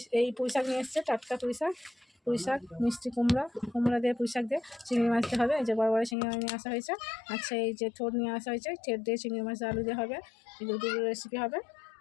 এই পুঁইশাক নিয়ে এসছে, টাটকা পুঁইশাক মিষ্টি কুমড়া দিয়ে পুঁইশাক দিয়ে চিংড়ি মাছ দিয়ে হবে। এই যে বড় বড় চিংড়ি মাছ নিয়ে আসা হয়েছে। আচ্ছা, এই যে থোড় নিয়ে আসা হয়েছে, ঠের দিয়ে চিংড়ি মাছ আলু দিয়ে হবে। এই দুটো রেসিপি হবে।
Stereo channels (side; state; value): right; drops out; at 6.2 s